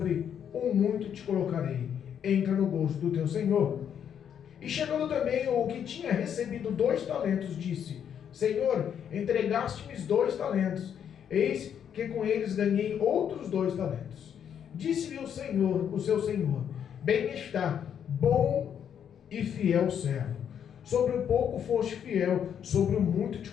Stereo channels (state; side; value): quieter; right; 8.6 dB